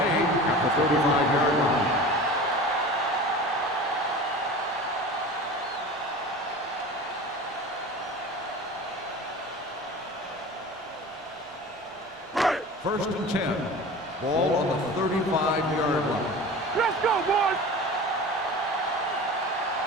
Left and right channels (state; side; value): normal; both; correlation 0.36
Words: at the 35-yard line. First and 10. Ball on the 35-yard line. Let's go, boys.